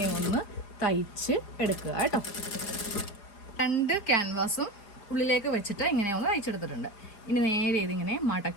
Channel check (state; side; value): late; right; 4.9 ms